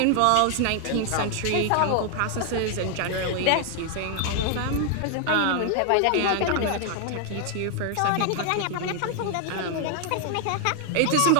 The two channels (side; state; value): both; different; correlation 0.00